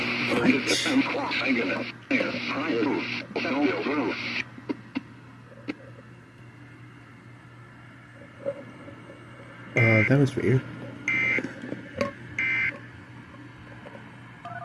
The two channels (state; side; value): identical; both; correlation 1.00